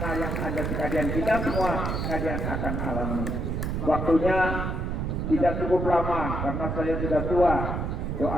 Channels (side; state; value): right; noise; rumble, 1 dB below the sound